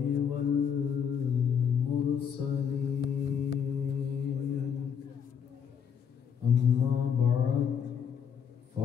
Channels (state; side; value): quieter; right; 7.6 dB